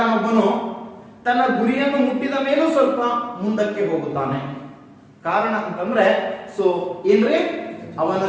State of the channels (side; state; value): both; identical; correlation 1.00